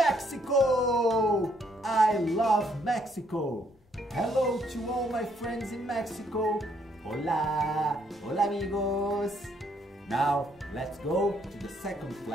I love Mexico! Hello to all my friends in Mexico. Hola! Hola amigos! Now, let's go to the second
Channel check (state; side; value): normal; both; correlation 0.70